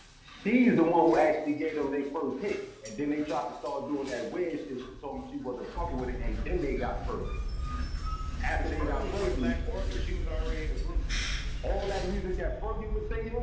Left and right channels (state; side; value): identical; both; correlation 1.00